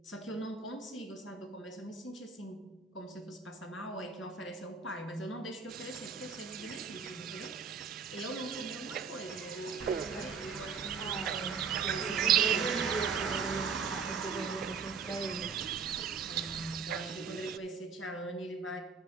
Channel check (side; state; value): left; quieter; 5.8 dB